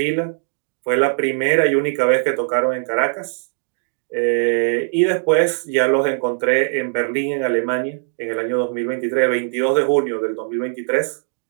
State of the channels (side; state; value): left; silent; digital silence